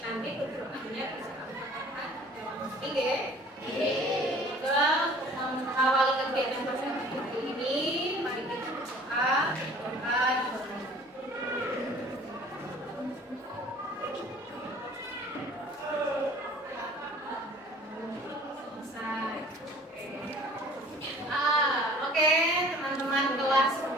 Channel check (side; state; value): both; normal; correlation 0.49